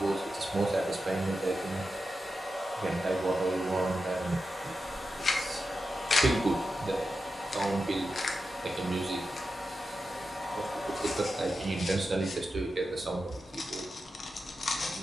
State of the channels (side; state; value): both; normal; correlation 0.90